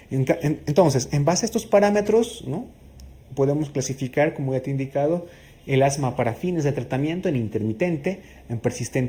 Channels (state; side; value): identical; both; correlation 1.00